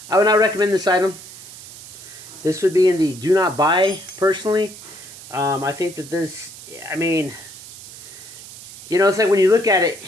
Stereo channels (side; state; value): right; noise; hiss, 16 dB below the sound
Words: would not recommend this item. This would be in the do not buy, personally. I think that this, I mean, you know, it's like when you look at it,